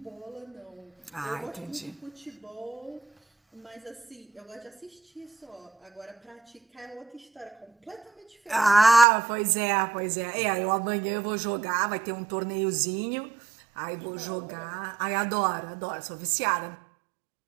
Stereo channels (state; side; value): drops out; left; at 9.1 s